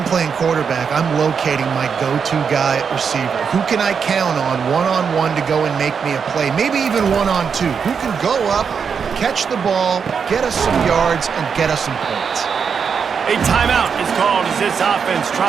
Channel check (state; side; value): quieter; left; 6.4 dB